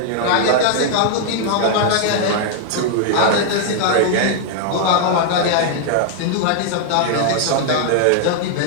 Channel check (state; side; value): different; both; correlation 0.00